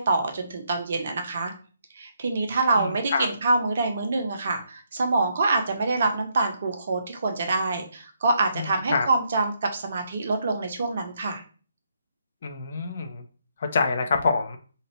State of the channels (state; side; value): inverted; both; correlation -0.75